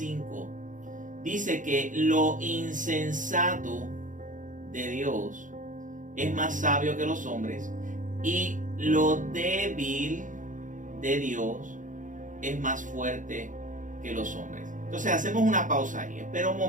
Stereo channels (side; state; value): left; late; 0.37 ms